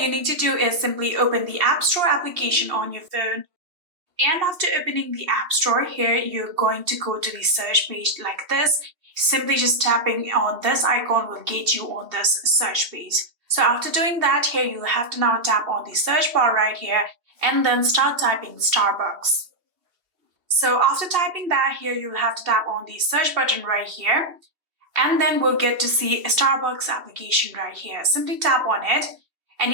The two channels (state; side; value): late; left; 2.9 ms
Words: you need to do is simply open the App Store application on your phone. And after opening the App Store, here you're going to go to the search page like this. Simply just tapping on this icon will get you on this search page. So after doing that, here you'll have to now tap on the search bar right here and then start typing Starbucks. So after typing that, here you'll have to tap on the search button right here, and then we'll get to see a Starbucks application right here. Simply tap on it and